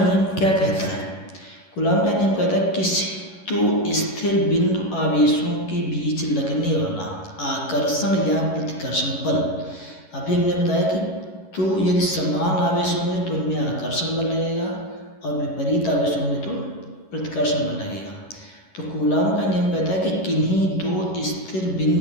क्या कहता है? कूलाम का नियम कहता है किसी दो स्थिर बिंदु आवेशों के बीच लगने वाला आकर्षण या प्रतिकर्षण बल। अभी हमने बताया कि तो यदि समान आवेश होंगे तो उनमें आकर्षण बल लगेगा और विपरीत आवेश होंगे तो प्रतिकर्षण बल लगेगा। तो कूलाम का नियम कहता है कि किन्हीं दो स्थिर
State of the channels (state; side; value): late; right; 11 ms